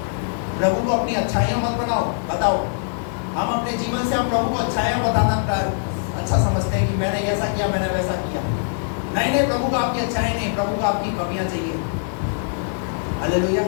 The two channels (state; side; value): silent; right; 64 dB below the other